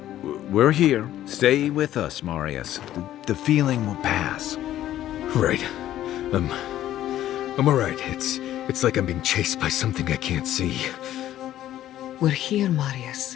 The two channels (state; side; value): quieter; right; 12.8 dB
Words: We're here. Stay with us, Marius. The feeling will pass. Right. I'm all right. It's like I'm being chased by something I can't see. We're here,